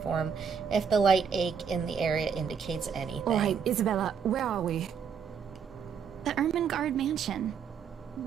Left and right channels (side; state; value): left; quieter; 6.8 dB